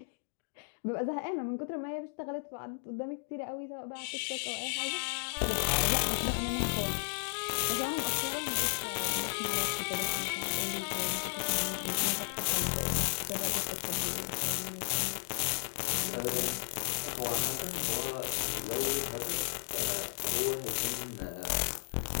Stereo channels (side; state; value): right; silent; digital silence